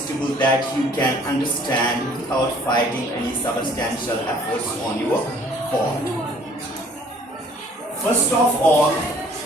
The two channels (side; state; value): both; normal; correlation 0.56